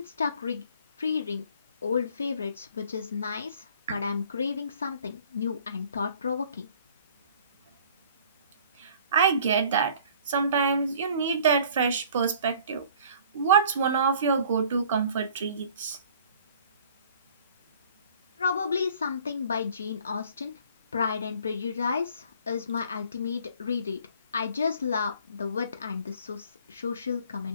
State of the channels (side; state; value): both; inverted; correlation -0.53